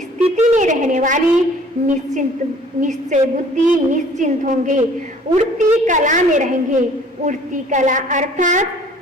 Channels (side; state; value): both; normal; correlation 0.53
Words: में रहने वाली निश्चय बुद्धि निश्चिंत होंगे, उड़ती कला में रहेंगे। उड़ती कला अर्थात